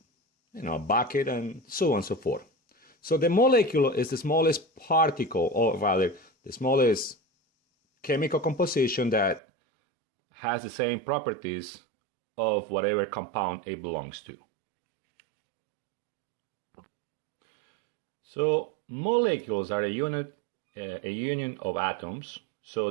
a bucket, and so on and so forth. So the molecule is the smallest particle, or rather, the smallest chemical composition that has the same properties of whatever compound it belongs to. So molecules are a union of atoms. So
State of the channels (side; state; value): left; drops out; at 9.4 s